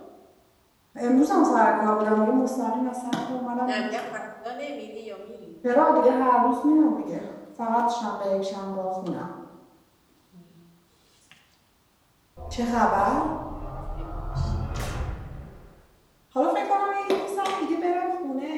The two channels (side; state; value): both; identical; correlation 1.00